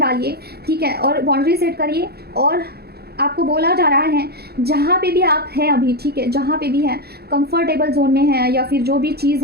ठीक है, और बाउंड्री सेट करिए। और आपको बोला जा रहा है जहाँ पे भी आप हैं अभी, ठीक है, जहाँ पे भी हैं, कंफर्टेबल जोन में है या फिर जो भी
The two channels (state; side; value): late; left; 0.46 ms